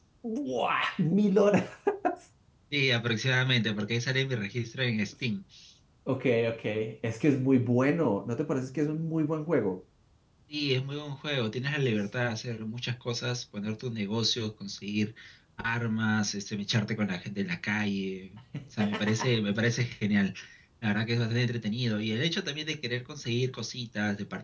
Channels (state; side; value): identical; both; correlation 1.00